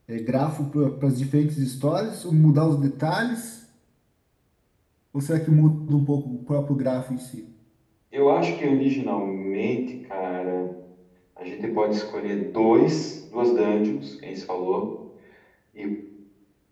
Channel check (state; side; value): identical; both; correlation 1.00